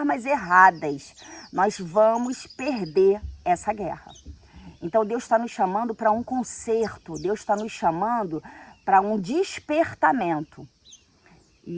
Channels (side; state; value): both; identical; correlation 1.00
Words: erradas, nós vamos perder essa guerra. Então Deus está nos chamando para um conserto, Deus está nos chamando para um despertamento.